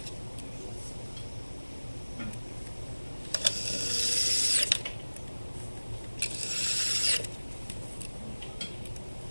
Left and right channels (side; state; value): both; inverted; correlation -1.00